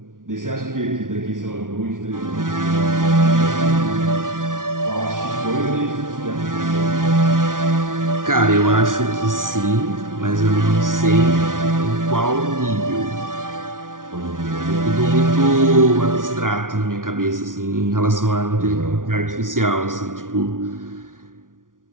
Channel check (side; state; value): left; late; 0.89 ms